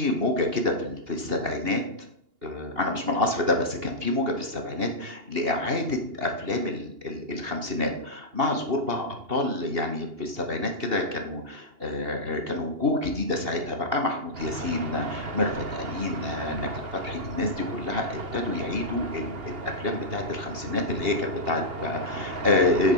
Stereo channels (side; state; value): left; late; 2.8 ms